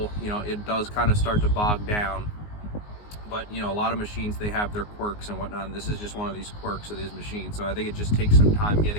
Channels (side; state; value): right; late; 19 ms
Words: It does kind of start to bog down. But a lot of machines, they have their quirks and whatnot, and this is just one of these quirks of these machines. So I think it just takes some time